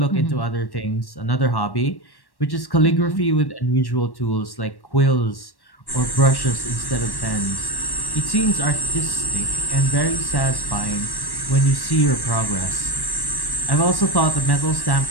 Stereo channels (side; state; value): right; late; 1.1 ms